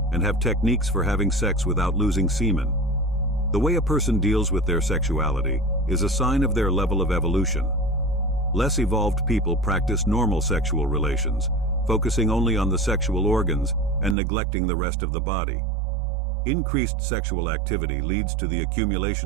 and have techniques for having sex without losing semen. The way a person deals with their sexuality is a sign of their level of evolution. Less evolved people practice normal sexual relations, focusing only on the sexual organs and neglecting the rest of the body. Increased sexual activity leads to the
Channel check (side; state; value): left; drops out; at 14.2 s